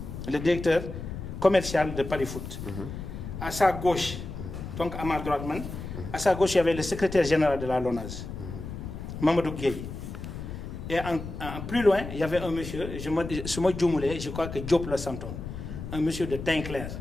le directeur commercial de Paris Foot. À sa gauche, donc à ma droite, à sa gauche, il y avait le secrétaire général de la LONASE, Mamadou Gueye. Et plus loin, il y avait un monsieur, je crois que Diop le Santon, un monsieur de teint clair.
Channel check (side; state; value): left; noise; rumble, 8 dB below the sound